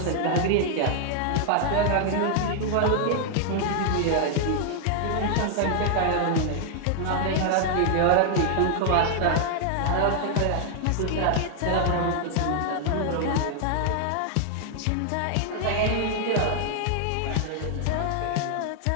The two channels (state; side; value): different; both; correlation 0.00